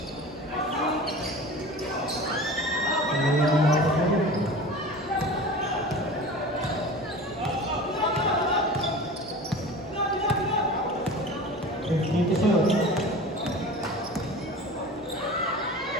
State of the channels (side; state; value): both; normal; correlation 0.36